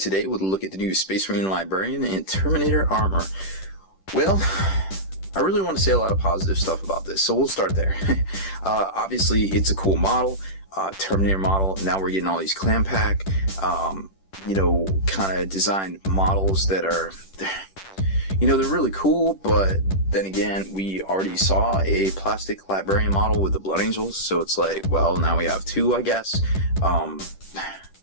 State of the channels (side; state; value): right; late; 10 ms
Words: with a look at the new Space Marine Librarian and Terminator armor. Well, I really want to say a lot of positive stuff about this, so we'll start there. Obviously, it's a cool model, Terminator model. Now we're getting all these clam pack, kind of designed models that are, they're really cool, but then again, we already saw a plastic Librarian model with the Blood Angels, so it's like, well, now we have two, I guess.